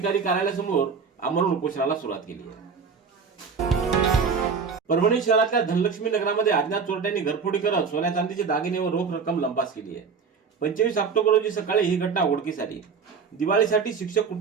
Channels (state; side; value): quieter; left; 5.6 dB